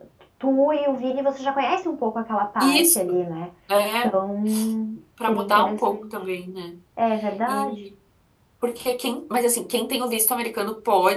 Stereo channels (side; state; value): both; identical; correlation 1.00